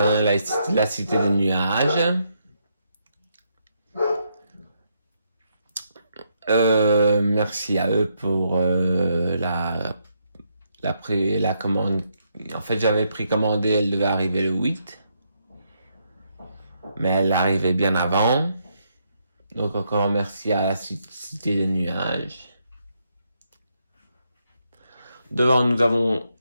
La Cité des Nuages. Merci à eux pour la commande. En fait, j'avais précommandé, elle devait arriver le 8. Mais elle arrivait bien avant. Donc encore merci à la Cité des Nuages. Devant, nous avons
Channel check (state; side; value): inverted; both; correlation -0.78